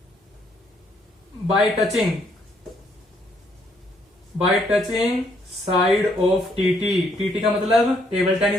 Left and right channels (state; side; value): normal; both; correlation 0.70